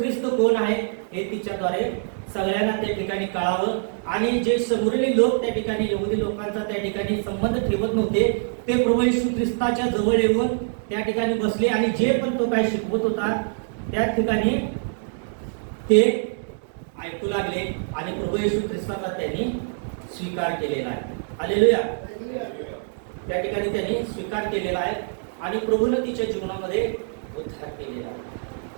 कोण आहे हे तिच्याद्वारे सगळ्यांना त्या ठिकाणी कळावं. आणि जे शमरोनी लोक त्या ठिकाणी यहुदी लोकांचा त्या ठिकाणी संबंध ठेवत नव्हते ते प्रभू येशू ख्रिस्ताच्या जवळ येऊन त्या ठिकाणी बसले आणि जे पण तो काय शिकवत होता त्या ठिकाणी ते ऐकू लागले आणि प्रभू येशू ख्रिस्ताचा त्यांनी स्वीकार केलेला आहे. हालेलुया. त्या ठिकाणी त्यांनी स्वीकार केलेला आहे आणि प्रभूने तिच्या जीवनामध्ये उद्धार केलेला आहे.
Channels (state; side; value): silent; left; digital silence